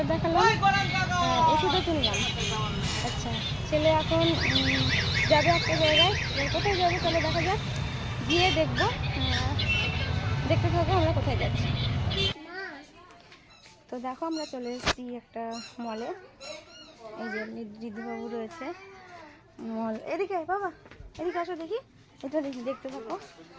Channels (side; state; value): both; identical; correlation 1.00